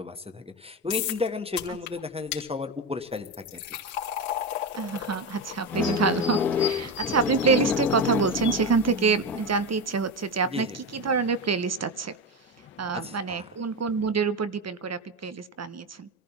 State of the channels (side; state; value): both; normal; correlation 0.17